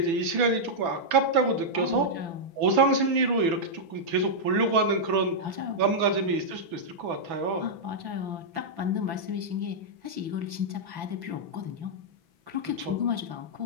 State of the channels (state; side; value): late; left; 6.1 ms